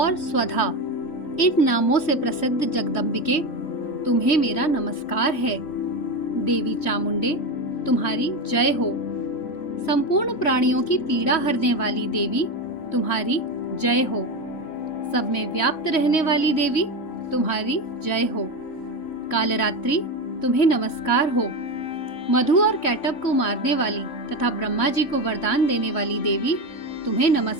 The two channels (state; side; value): late; right; 3.5 ms